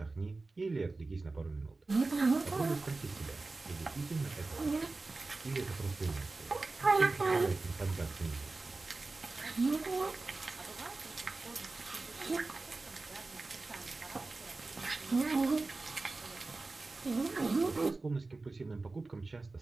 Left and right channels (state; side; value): quieter; left; 3.5 dB